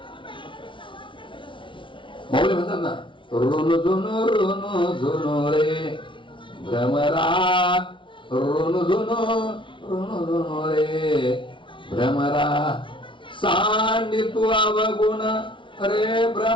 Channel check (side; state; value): right; late; 0.24 ms